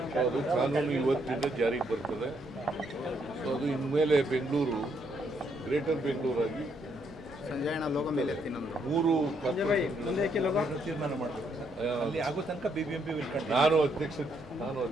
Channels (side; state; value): both; normal; correlation 0.74